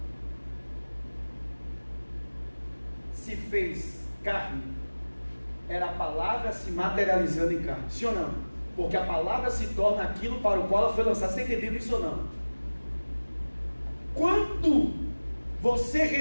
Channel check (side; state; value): both; inverted; correlation -1.00